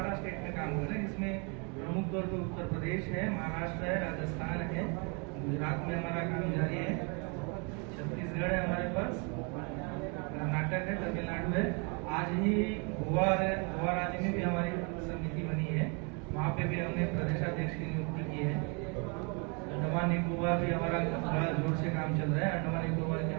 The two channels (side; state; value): left; quieter; 34.1 dB